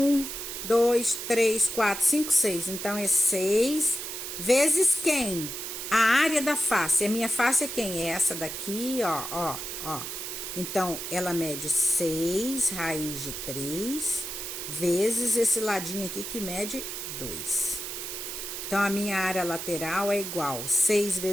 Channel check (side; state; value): right; noise; hiss, 6 dB below the sound